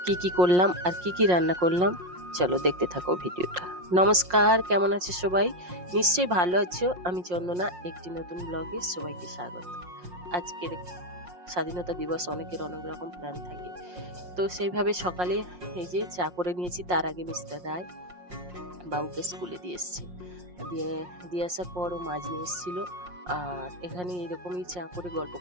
কি করলাম আর কি রান্না করলাম, চলো দেখতে থাকো ভিডিওটা। নমস্কার, কেমন আছে সবাই? নিশ্চয়ই ভালো আছো। আমি চন্দনা, একটি নতুন ব্লগে সবাইকে স্বাগত। আজকের স্বাধীনতা দিবস, অনেকের অনেক রকম প্ল্যান থাকে, তো সেইভাবে সকালে এই যে চা করে নিয়েছি। তার আগে মিস্টার রায় বাবুকে স্কুলে দিয়ে এসছে, দিয়ে আসার পর ও মাছ নিয়ে এসেছিল। আর এখানে এরকমই চা করে গল্প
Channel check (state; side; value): late; left; 5.6 ms